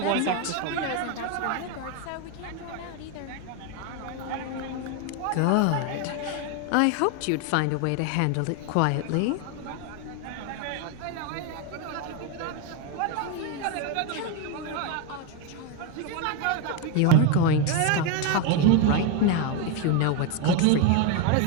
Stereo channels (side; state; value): both; different; correlation 0.02